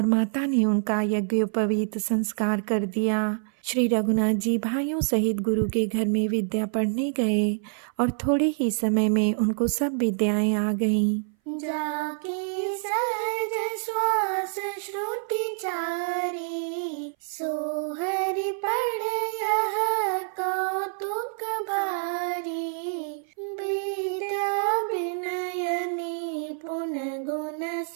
माता ने उनका यज्ञोपवीत संस्कार कर दिया। श्री रघुनाथ जी भाइयों सहित गुरु के घर में विद्या पढ़ने गए और थोड़े ही समय में उनको सब विद्याएं आ गईं। जाके सहज श्वास श्रुति चारी, सोहरि पढ़ यह कौतुक भारी। विद्या विनय निपुण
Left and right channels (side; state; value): left; silent; 58 dB below the other